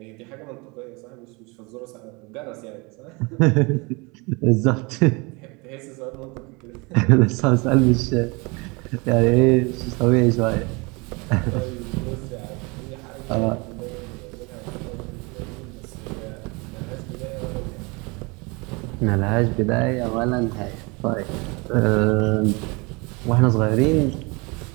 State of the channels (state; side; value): quieter; left; 27.8 dB